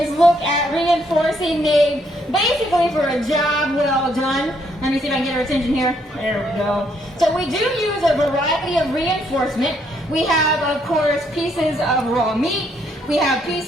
look at reinforcing Nate basically for a job well done. Let me see if I can get her attention here. There we go. So we do use a variety of reinforcement. We have, of course, pieces of raw meat. We have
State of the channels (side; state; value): both; normal; correlation 0.71